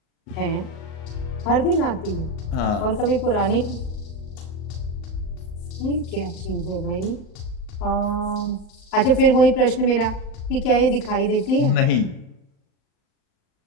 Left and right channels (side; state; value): right; late; 38 ms